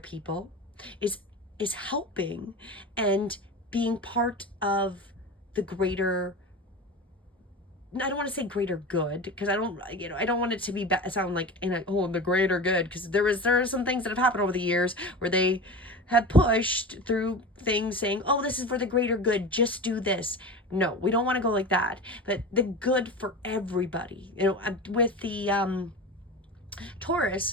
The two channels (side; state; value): both; normal; correlation 0.29